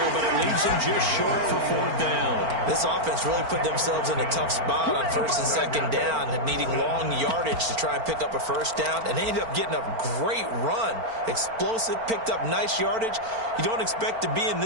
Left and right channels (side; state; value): left; late; 4.4 ms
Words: but it leaves him just short for fourth down. This offense really put themselves in a tough spot on first and second down, needing long yardage to try and pick up a first down, and they ended up getting a great run. Explosive, picked up nice yardage. You don't expect to be in